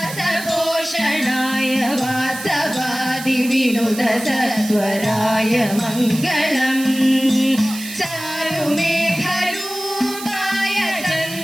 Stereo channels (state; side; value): noise; right; hiss, 11 dB below the sound